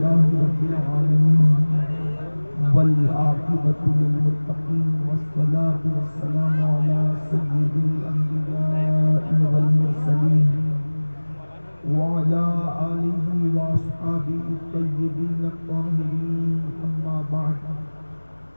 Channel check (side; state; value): both; inverted; correlation -1.00